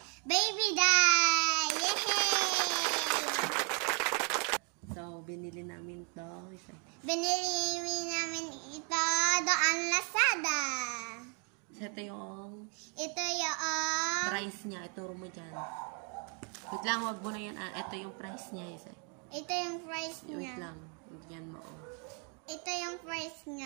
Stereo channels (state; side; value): quieter; left; 36.5 dB